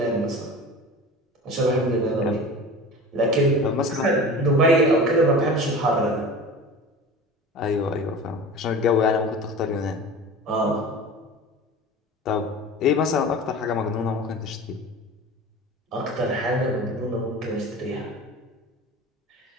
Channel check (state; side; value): normal; both; correlation 0.35